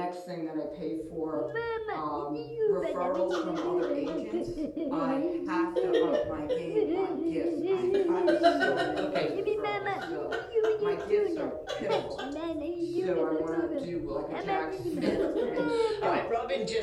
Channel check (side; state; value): both; identical; correlation 1.00